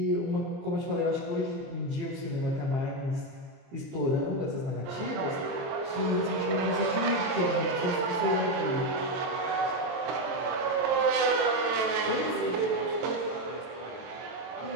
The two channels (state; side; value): late; left; 23 ms